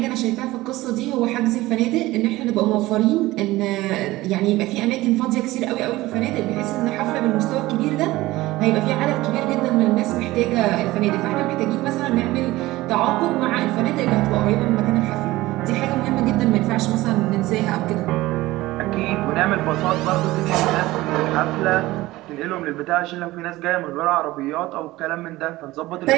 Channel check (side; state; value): left; quieter; 18.2 dB